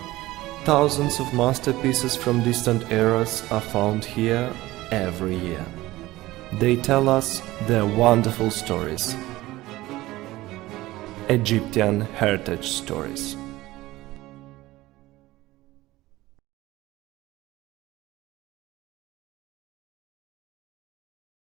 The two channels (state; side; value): quieter; left; 17.8 dB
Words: Thousands of masterpieces from distant eras are found here every year. They tell us their wonderful stories. Egyptian heritage stories.